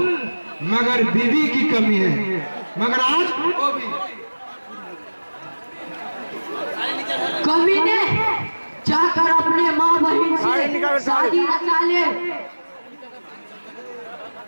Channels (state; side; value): inverted; both; correlation -1.00